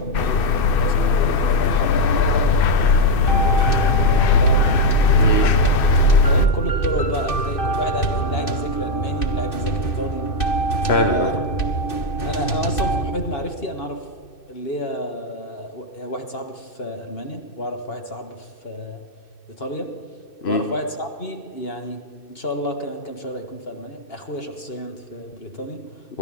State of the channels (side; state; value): right; late; 2.6 ms